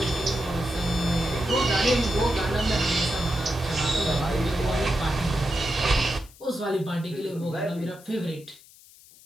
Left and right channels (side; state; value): left; noise; hiss, 24 dB below the sound